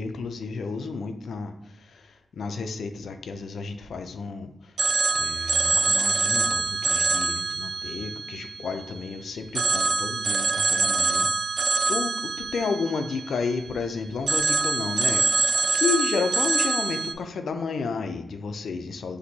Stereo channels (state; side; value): normal; both; correlation 0.87